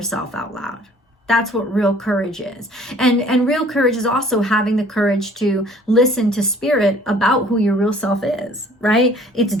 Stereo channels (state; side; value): normal; both; correlation 0.54